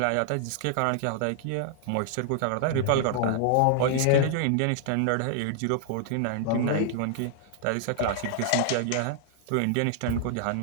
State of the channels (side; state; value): both; different; correlation 0.00